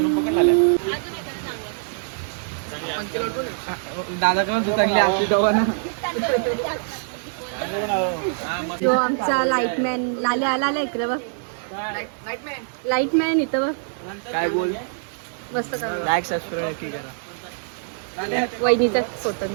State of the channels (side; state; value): left; silent; 63 dB below the other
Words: पकड लागल्या. दादा पण चांगली आपली जवळ ना. जो आमचा लाईटमॅन लाल्या आला इकडे बघ. लाईटमॅन इथं बघ. काय बोल. मस्त का लाईक सबस्क्राईब की करा. वहिनीचा फोटो